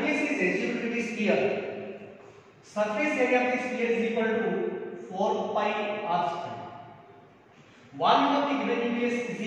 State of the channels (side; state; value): both; identical; correlation 1.00